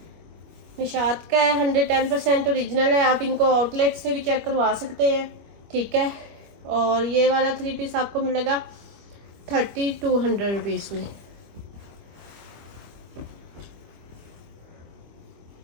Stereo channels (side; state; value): left; late; 25 ms